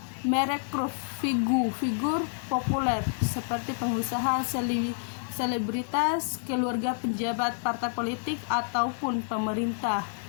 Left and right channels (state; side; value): silent; right; digital silence